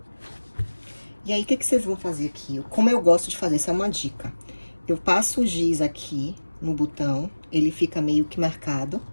E aí, o que vocês vão fazer aqui? Como eu gosto de fazer, essa é uma dica. Eu passo o giz aqui no botão, ele fica meio que marcado,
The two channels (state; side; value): inverted; both; correlation -1.00